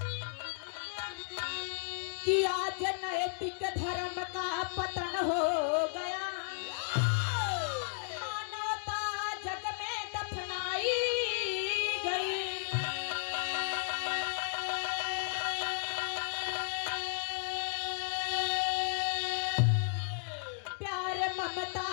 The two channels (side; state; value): right; silent; digital silence